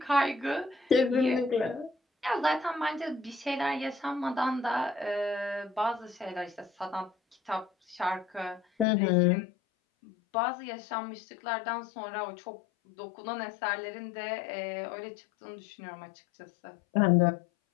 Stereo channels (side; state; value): right; drops out; at 8.8 s